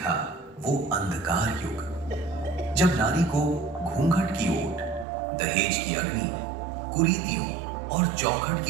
वो अंधकार युग जब नारी को घूंघट की ओट, दहेज की अग्नि, कुरीतियों और चौखट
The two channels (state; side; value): drops out; left; at 5.1 s